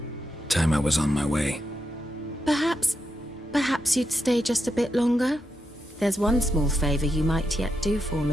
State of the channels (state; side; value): normal; both; correlation 0.84